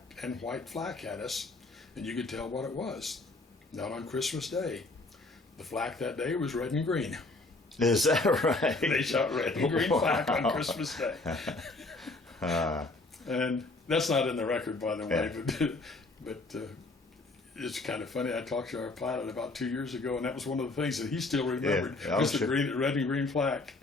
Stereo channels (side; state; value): right; quieter; 3.2 dB